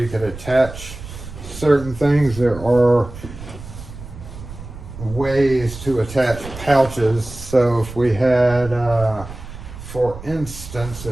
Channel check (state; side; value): noise; right; rumble, 13 dB below the sound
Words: could attach certain things. There are ways to attach pouches. So if we had, for instance,